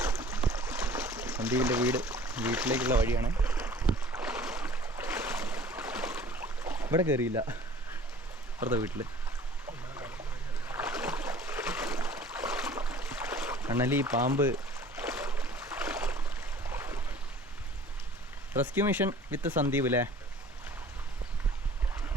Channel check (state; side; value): normal; both; correlation 0.48